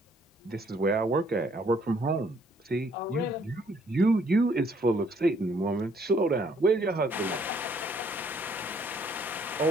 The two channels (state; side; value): normal; both; correlation 0.65